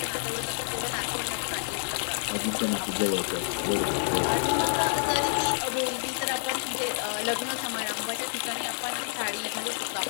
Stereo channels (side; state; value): right; silent; 57 dB below the other